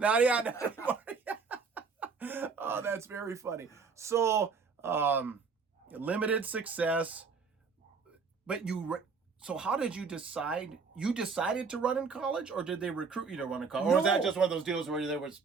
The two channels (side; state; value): left; quieter; 5.0 dB